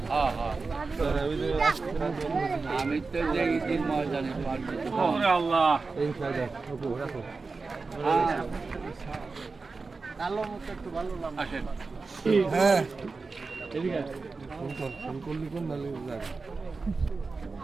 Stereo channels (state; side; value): quieter; left; 4.1 dB